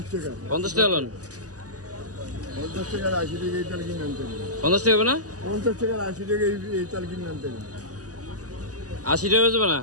টাকা। 50 টাকা লোন? 50 টাকার 80 টাকা এই তাল কিনে আনতে হবে। 50 টাকা হবে না? 50 টাকার 80 টাকা এই তাল কিনে আনতে হবে। 80 টাকা বেচবে না?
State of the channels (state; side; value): late; left; 0.67 ms